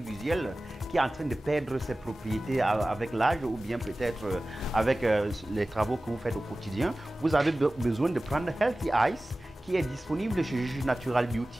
qui est en train de perdre ses propriétés avec l'âge ou bien peut-être avec les travaux que vous faites au quotidien. Vous avez besoin de prendre Healthy Eyes qui est disponible chez Natural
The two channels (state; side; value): normal; both; correlation 0.97